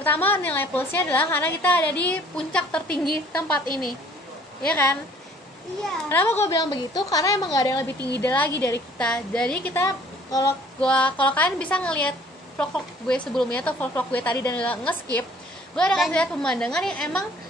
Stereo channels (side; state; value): both; normal; correlation 0.56